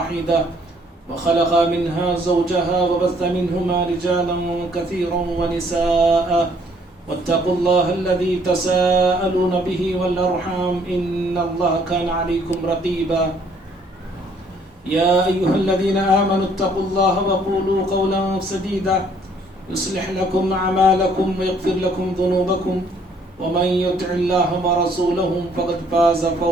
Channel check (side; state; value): both; normal; correlation 0.63